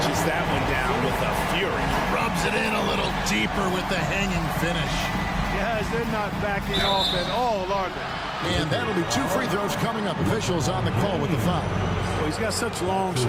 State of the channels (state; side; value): identical; both; correlation 1.00